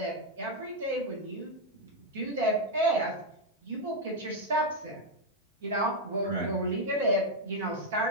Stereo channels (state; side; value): normal; both; correlation 0.00